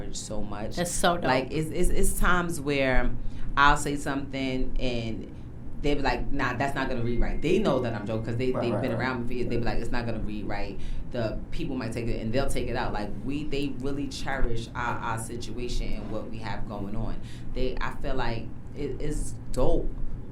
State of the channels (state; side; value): identical; both; correlation 1.00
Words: so much. That's so dope. Like it's times where I'll say something and they be like, nah, that's not gonna read right. They know that I'm joking because they've been around me for years. They be like, it's not gonna read right. The people might take it and they'll take it out. Like they really cherish our situation and what we have going on. I feel like it's dope